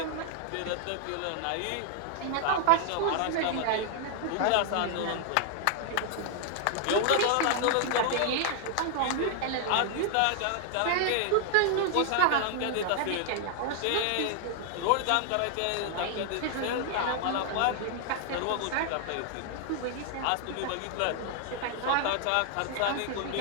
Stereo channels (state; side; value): different; both; correlation 0.00